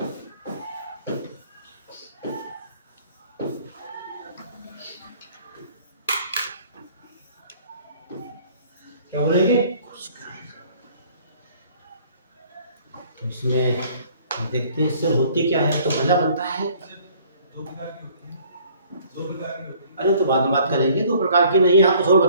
क्या बोलेंगे? इसमें देखते हैं सेल होती क्या है। तो पहला बनता है, अरे तो बाद में बात करेंगे, दो प्रकार की नहीं, यहाँ कुछ और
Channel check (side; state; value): both; inverted; correlation -0.56